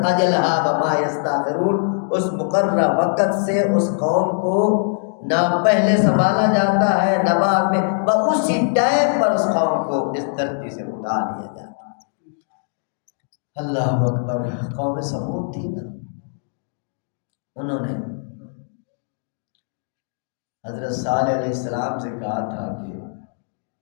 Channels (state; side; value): silent; right; digital silence